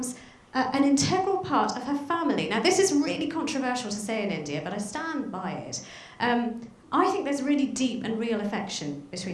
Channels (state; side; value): identical; both; correlation 1.00